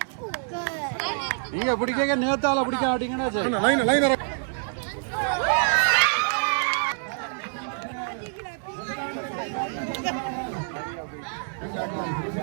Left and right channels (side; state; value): left; silent; 61 dB below the other